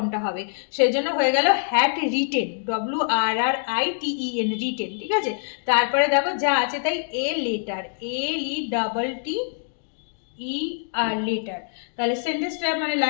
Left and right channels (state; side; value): silent; right; digital silence